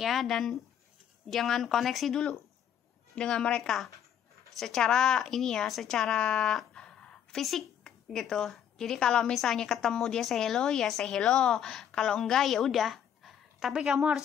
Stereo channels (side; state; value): right; quieter; 9.3 dB